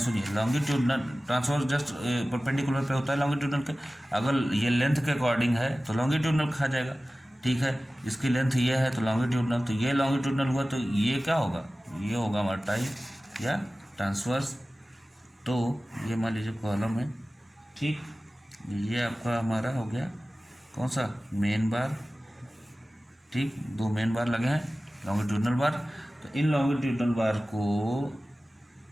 लॉन्गिट्यूडिनल ट्रांसवर्स जस्ट परपेंडिकुलर पे होता है लॉन्गिट्यूडिनल के, अगर ये लेंथ के अकॉर्डिंग है तो लॉन्गिट्यूडिनल कहा जाएगा। ठीक है, इसकी लेंथ ये है तो लॉन्गिट्यूडिनल, तो ये लॉन्गिट्यूडिनल हुआ, तो ये क्या होगा? ये होगा हमारा टाई या ट्रांसवर्स। तो ये मान लीजिए कॉलम है। ठीक, ये आपका हमारा हो गया कौन सा? मेन बार। ठीक, दो मेन बार लगे हैं, लॉन्गिट्यूडिनल बार। तो इन लॉन्गिट्यूडिनल बार को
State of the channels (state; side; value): normal; both; correlation 0.96